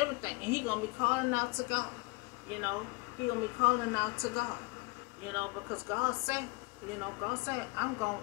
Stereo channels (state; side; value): quieter; right; 25.7 dB